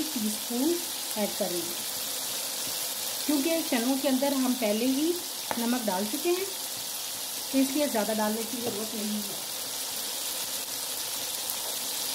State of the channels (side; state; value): both; identical; correlation 1.00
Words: टीस्पून ऐड कर रही हूँ, क्योंकि चनों के अंदर हम पहले ही नमक डाल चुके हैं, तो इसलिए ज़्यादा डालने की ज़रूरत नहीं है।